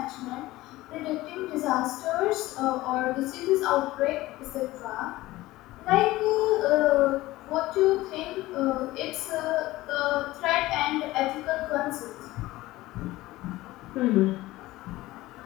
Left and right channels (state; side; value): quieter; right; 17.9 dB